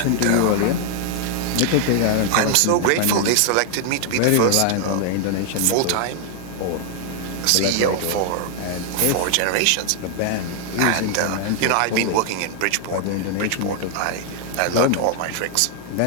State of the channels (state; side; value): different; both; correlation 0.00